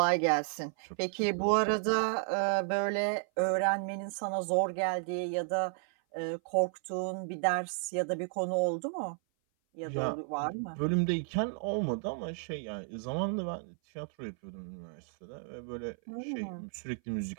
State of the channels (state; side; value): silent; left; 56 dB below the other